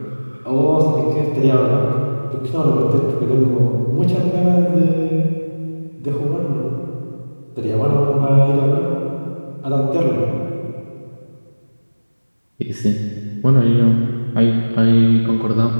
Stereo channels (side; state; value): both; inverted; correlation -1.00